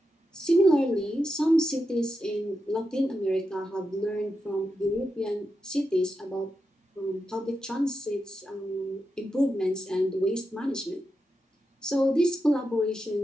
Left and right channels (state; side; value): normal; both; correlation 0.88